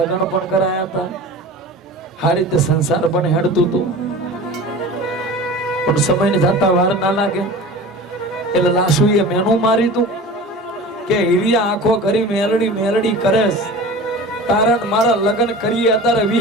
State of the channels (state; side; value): normal; both; correlation 0.36